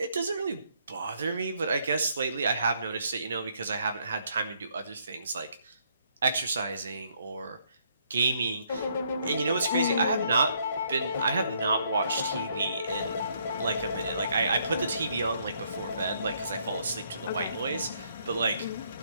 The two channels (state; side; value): inverted; both; correlation -0.70